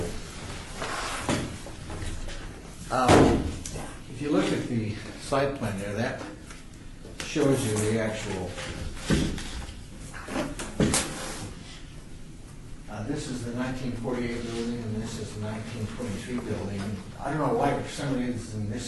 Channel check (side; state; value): both; identical; correlation 1.00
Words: If you look at the site plan there, that shows you the actual. This is the 1948 building, and this is the 1923 building. I don't know why, for some reason,